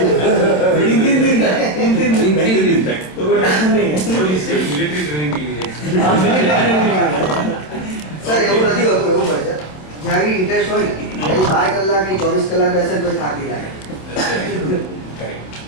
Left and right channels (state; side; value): late; right; 27 ms